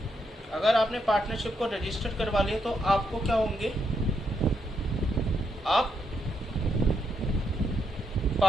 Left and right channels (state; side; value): normal; both; correlation 0.79